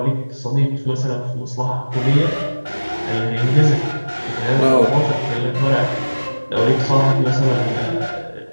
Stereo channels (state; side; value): inverted; both; correlation -1.00